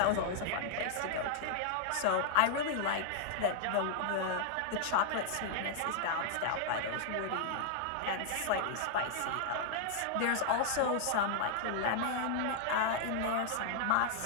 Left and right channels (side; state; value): both; different; correlation 0.00